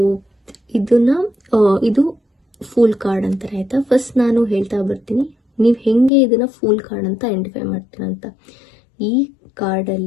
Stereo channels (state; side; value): drops out; right; at 6.1 s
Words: ಇದು ಫೂಲ್ ಕಾರ್ಡ್ ಅಂತಾರೆ ಆಯ್ತಾ. ಫಸ್ಟ್ ನಾನು ಹೇಳ್ತಾ ಬರ್ತೀನಿ, ನೀವು ಹೆಂಗೆ ಇದನ್ನ ಫೂಲ್ ಕಾರ್ಡ್ ಅಂತ ಐಡೆಂಟಿಫೈ ಮಾಡ್ತೀರಾ ಅಂತ. ಈ